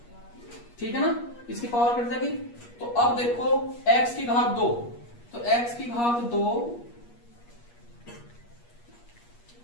ठीक है ना, इसकी पावर कट जाएगी। तो अब देखो x की घात 2, तो x की घात 2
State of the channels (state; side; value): late; right; 8.4 ms